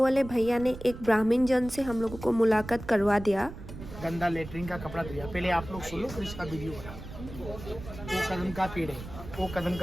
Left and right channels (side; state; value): right; noise; rumble, 12 dB below the sound